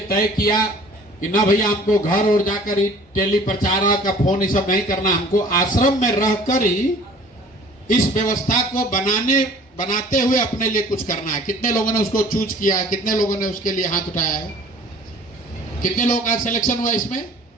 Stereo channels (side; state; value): both; normal; correlation 0.50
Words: तय किया कि ना भैया हमको घर और जाकर ही टेली प्रचारक का फोन ये सब नहीं करना, हमको आश्रम में रहकर ही इस व्यवस्था को बनाते हुए अपने लिए कुछ करना है। कितने लोगों ने उसको चूज किया है? कितने लोगों ने उसके लिए हाथ उठाया है? कितने लोगों का सिलेक्शन हुआ इसमें?